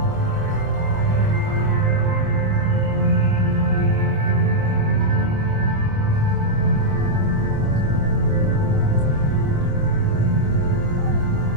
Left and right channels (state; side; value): late; left; 25 ms